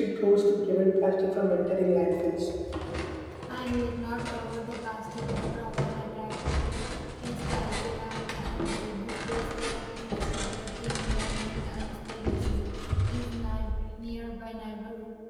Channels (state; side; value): identical; both; correlation 1.00